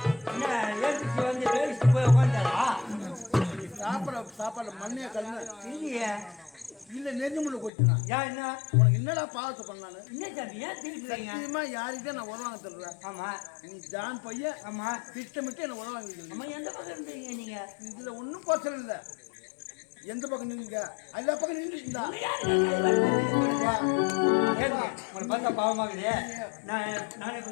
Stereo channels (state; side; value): drops out; right; at 7.7 s